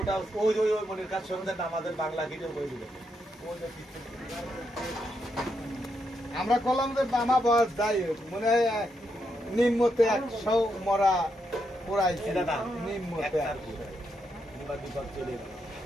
ওই ওই ওই মনের কাজ শুনতে আমাদের বাংলা ভিডিও করে দিবে ওই যে আমরা কলম যে বামা বয়স যাই হোক মনে হয় নিম্নতে 100 মরা পোড়াইছে নিম্নতে চলে গেল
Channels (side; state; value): both; normal; correlation 0.81